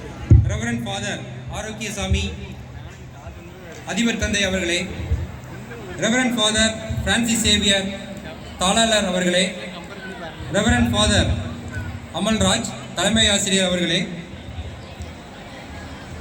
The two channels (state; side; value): identical; both; correlation 1.00